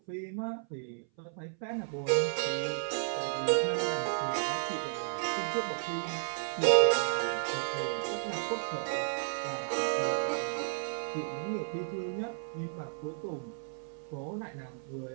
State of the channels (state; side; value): silent; left; 56 dB below the other